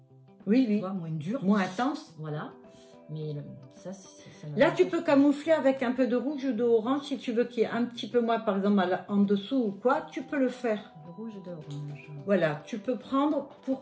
Oui. Tu vois, moins dur. Moins intense. Voilà. Mais ça là, tu peux camoufler avec un peu de rouge ou d'orange si tu veux qu'il y ait un petit peu moins, par exemple, en dessous ou quoi, tu peux le faire. De rouge et d'orange. Voilà, tu peux prendre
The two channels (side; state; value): both; identical; correlation 1.00